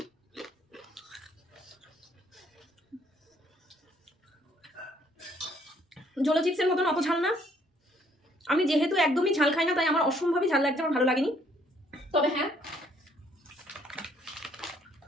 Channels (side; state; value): both; normal; correlation 0.65